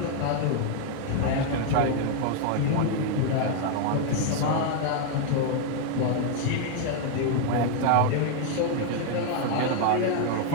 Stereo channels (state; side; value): different; both; correlation 0.00